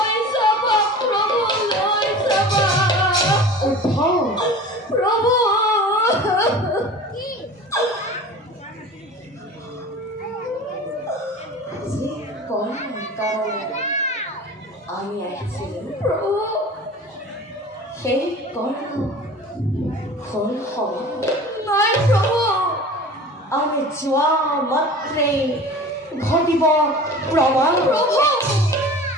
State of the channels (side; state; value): both; normal; correlation 0.39